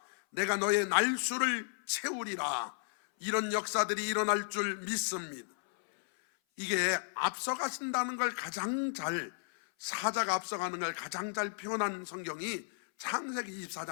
내가 너의 날수를 채우리라. 이런 역사들이 일어날 줄 믿습니다. 이게 앞서가신다는 걸 가장 잘, 사자가 앞서가는 걸 가장 잘 표현한 성경이 창세기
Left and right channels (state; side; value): silent; right; 55 dB below the other